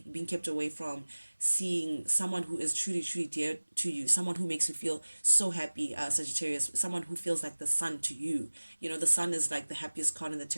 being kept away from seeing someone who is truly, truly dear to you, someone who makes you feel so happy, Sagittarius, someone who feels like the sun to you. The sun is like the happiest card in the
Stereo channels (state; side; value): inverted; both; correlation -1.00